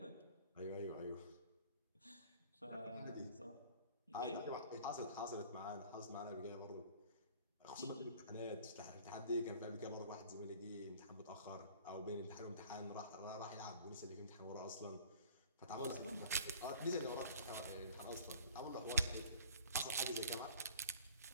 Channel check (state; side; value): inverted; both; correlation -0.48